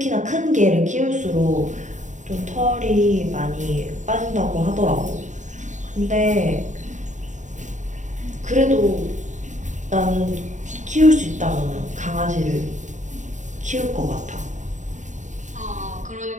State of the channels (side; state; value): left; late; 0.35 ms